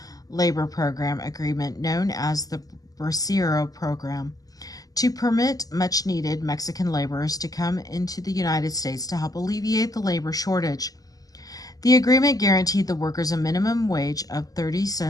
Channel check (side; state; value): right; late; 0.17 ms